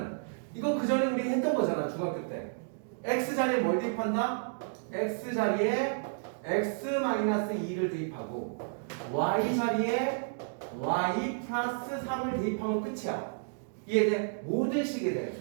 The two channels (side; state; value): left; silent; digital silence